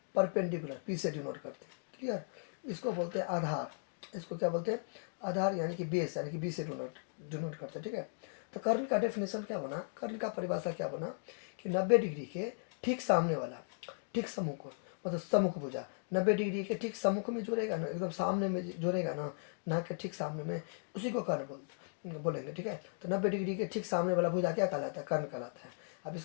परपेंडिकुलर, पी से डिनोट करते हैं। क्लियर? इसको बोलते हैं आधार, इसको क्या बोलते हैं, आधार यानी कि बेस, यानी कि बी से डिनोट करते हैं, ठीक है। तो कर्ण का डेफिनेशन क्या बना, कर्ण का परिभाषा क्या बना कि 90 डिग्री के ठीक सामने वाला, ठीक सम्मुख, मतलब सम्मुख भुजा 90 डिग्री के ठीक सम्मुख में जुड़ेगा ना, एकदम सामने में जुड़ेगा ना, नाक के ठीक सामने में, उसी को कर्ण बोलेंगे, ठीक है। तो 90 डिग्री के ठीक सामने वाला भुजा क्या कहलाता है, कर्ण कहलाता है। अब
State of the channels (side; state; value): right; silent; digital silence